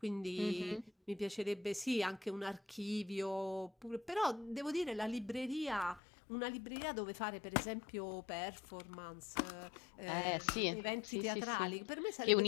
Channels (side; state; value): right; drops out; at 6.0 s